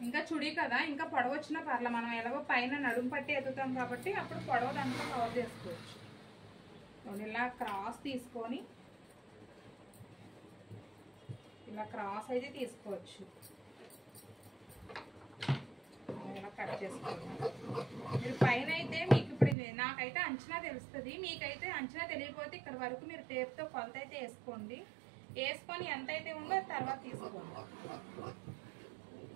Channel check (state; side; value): drops out; left; at 19.6 s